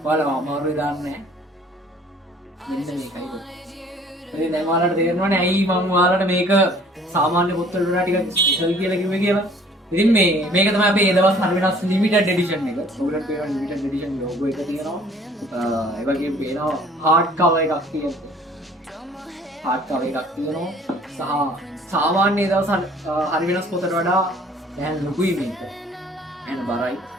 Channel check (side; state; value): both; normal; correlation 0.55